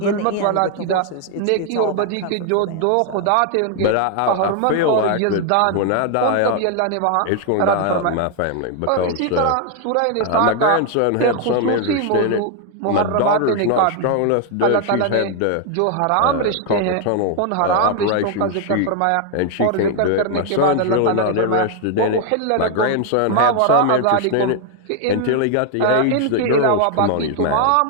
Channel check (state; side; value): different; both; correlation 0.00